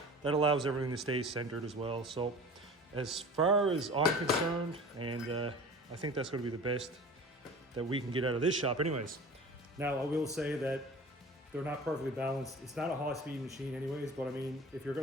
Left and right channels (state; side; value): normal; both; correlation 0.39